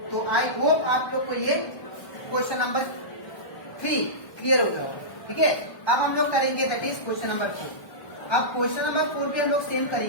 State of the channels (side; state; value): right; late; 1.3 ms